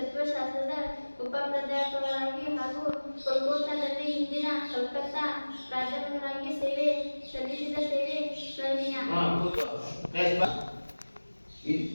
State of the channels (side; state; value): both; inverted; correlation -1.00